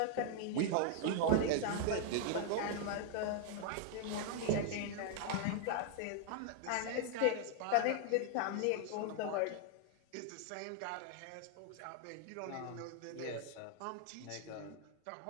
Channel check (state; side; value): different; both; correlation 0.00